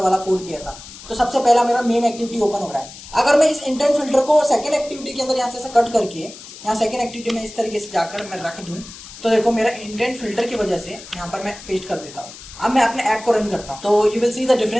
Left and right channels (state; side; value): noise; left; hiss, 16 dB below the sound